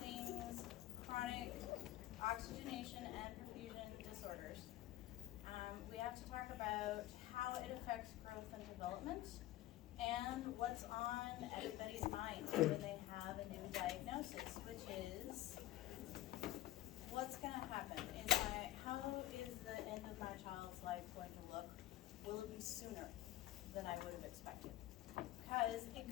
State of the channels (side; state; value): right; quieter; 14.9 dB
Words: chronic oxygenation and perfusion disorders, we have to talk about how it affects growth and development and what's on everybody's mind when they have a new diagnosis, which is what's going to happen? How is the end of my child's life going to look? Will it be sooner than I would have expected? Because it